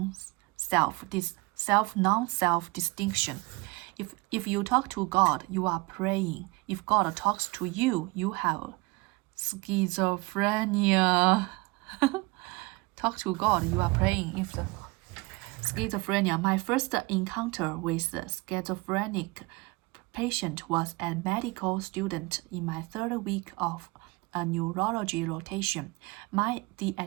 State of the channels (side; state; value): left; quieter; 24.8 dB